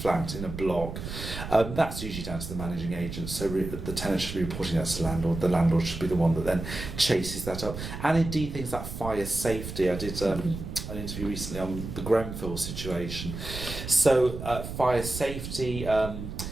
in a block, that's usually down to the managing agent, so the tenant should be reporting that to the landlord should be the one that then chases that up. And indeed things like fire safety. I did an interview recently on the Grenfell situation. So fire safety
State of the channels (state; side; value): noise; right; rumble, 8 dB below the sound